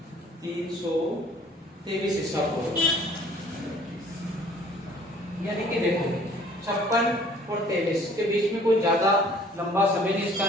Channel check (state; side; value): normal; both; correlation 0.54